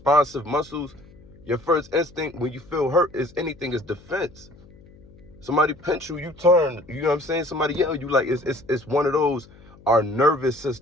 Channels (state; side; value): noise; left; hum, 24 dB below the sound